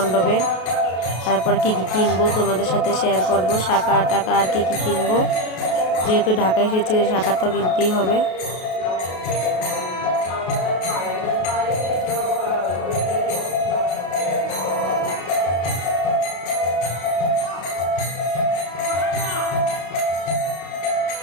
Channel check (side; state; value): right; late; 33 ms